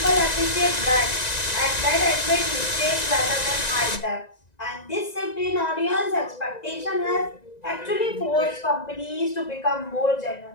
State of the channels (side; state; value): right; late; 1.9 ms